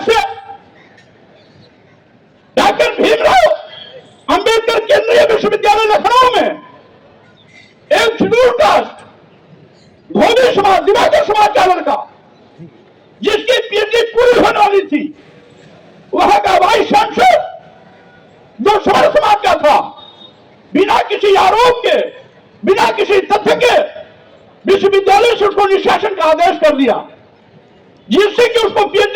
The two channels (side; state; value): both; identical; correlation 1.00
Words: से डॉक्टर भीमराव अंबेडकर केंद्रीय विश्वविद्यालय लखनऊ में एक शेड्यूल कास्ट धोबी समाज, दिवाकर समाज का लड़का, जिसकी पीएचडी पूरी होने वाली थी, वहां का वाइस चांसलर जो समर समाज का था, बिना किसी आरोप के, बिना किसी तथ्य के विश्वविद्यालय से उसको निष्कासन का आदेश कर दिया, जिससे कि उसको